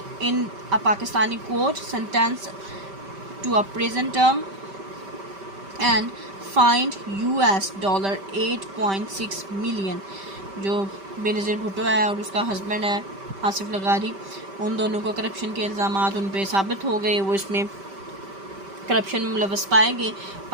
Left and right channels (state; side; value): late; left; 5.1 ms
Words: in a Pakistani court, sentenced to a prison term and fined $8.6 million. جو بینظیر بھٹو ہے اور اس کا ہسبینڈ ہے آصف لغاری، ان دونوں کو کرپشن کے الزامات ان پہ ثابت ہو گئے، وہ اس میں کرپشن میں ملوث پائے گئے۔